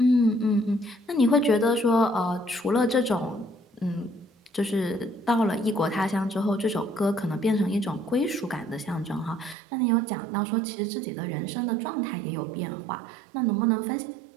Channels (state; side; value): drops out; left; at 9.6 s